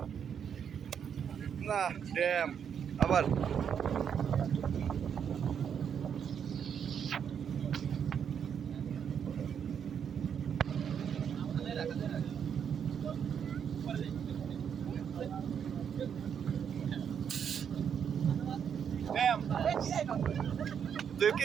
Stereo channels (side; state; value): left; quieter; 7.9 dB